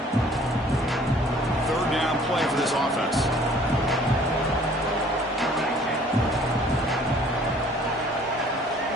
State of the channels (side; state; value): both; normal; correlation 0.55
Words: Third down play for this offense.